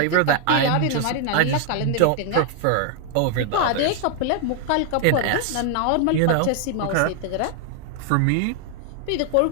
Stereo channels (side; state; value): both; different; correlation 0.00